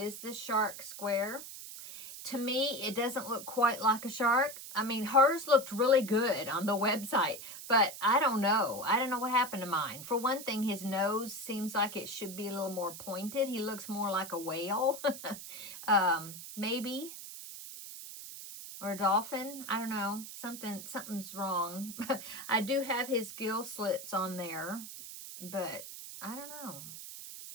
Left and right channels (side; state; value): right; noise; hiss, 11 dB below the sound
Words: the shark square. To me, it doesn't look quite like a shark. I mean, hers looked really good on the website, but I don't know. I don't know what happened to mine. For one thing, his nose seems like it should be a little more pointed. He looks more like a whale, maybe, or a dolphin. I don't know. Something's wrong. I do have his gill slits on there, but I don't know.